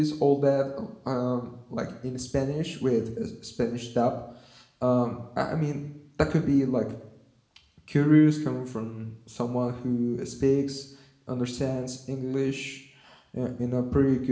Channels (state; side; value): identical; both; correlation 1.00